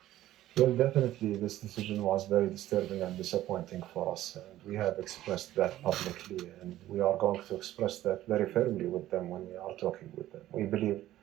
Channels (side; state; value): left; quieter; 14.1 dB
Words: Well, definitely this decision was very disturbing and disappointing for us, and we have expressed that publicly, and we are going to express that very firmly with them when we are talking with them. We believe